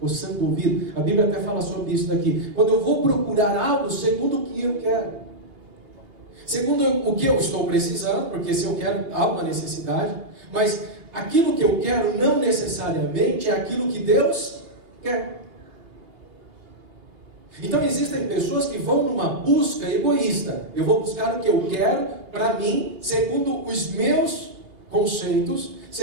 o ouvido. A Bíblia até fala sobre isso daqui. Quando eu vou procurar algo segundo o que eu quero, segundo o que eu estou precisando, porque se eu quero, há uma necessidade, mas aquilo que eu quero não necessariamente é aquilo que Deus quer. Então existem pessoas que vão numa busca egoísta. Eu vou buscar o que eu quero para mim, segundo os meus conceitos,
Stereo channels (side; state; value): left; late; 2.8 ms